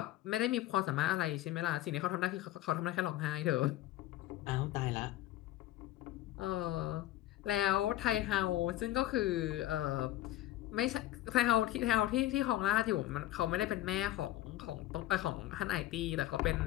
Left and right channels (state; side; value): quieter; right; 14.7 dB